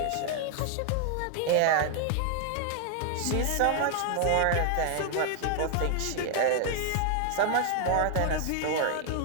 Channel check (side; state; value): both; different; correlation 0.00